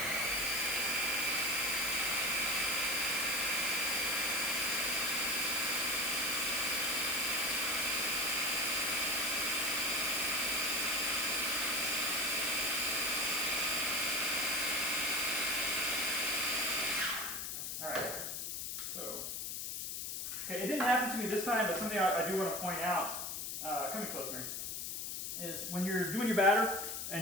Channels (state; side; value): noise; left; hiss, 4 dB below the sound